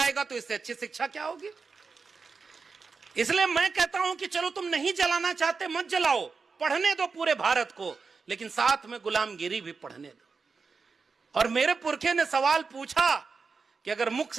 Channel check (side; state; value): left; quieter; 4.8 dB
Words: तो इससे अच्छी शिक्षा क्या होगी। इसलिए मैं कहता हूं कि चलो तुम नहीं जलाना चाहते, मत जलाओ, पढ़ने दो पूरे भारत को, लेकिन साथ में गुलामगिरी भी पढ़ने दो। और मेरे पुरखे ने सवाल पूछा कि अगर मुख